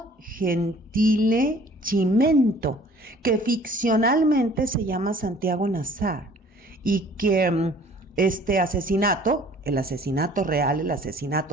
Gentile Chimento, que ficcionalmente se llama Santiago Nazar, y que este asesinato, el asesinato real, el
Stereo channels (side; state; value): both; normal; correlation 0.53